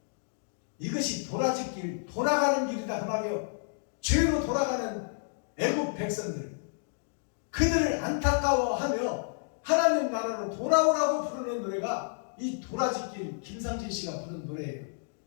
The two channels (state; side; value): silent; right; digital silence